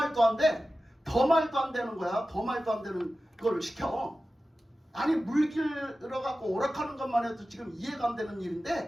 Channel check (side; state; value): both; normal; correlation 0.95